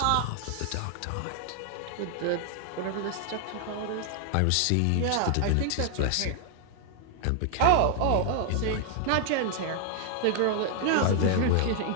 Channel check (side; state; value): both; different; correlation 0.00